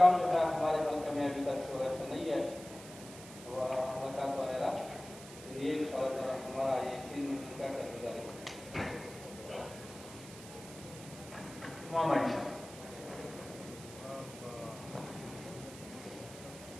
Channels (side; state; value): right; noise; hiss, 15 dB below the sound